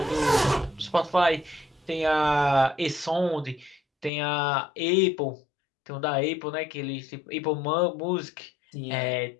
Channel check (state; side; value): drops out; right; at 4.1 s